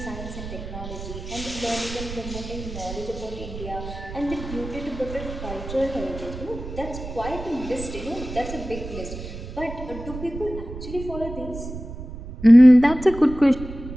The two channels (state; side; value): noise; right; rumble, 10 dB below the sound